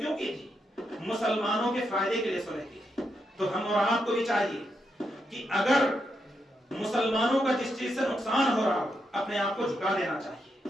کی تھی؟ مسلمانوں کے فائدے کے لیے صلح کی تھی۔ تو ہم اور آپ کو بھی چاہیے کہ اگر مسلمانوں کا جس چیز سے نقصان ہو رہا ہو، اپنے آپ کو جھکا دینا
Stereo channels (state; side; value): normal; both; correlation 0.82